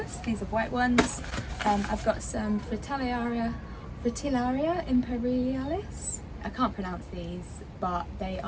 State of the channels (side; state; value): both; identical; correlation 1.00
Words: these are white ones. I've got some fritillaria imperialis. I can't pronounce these, but they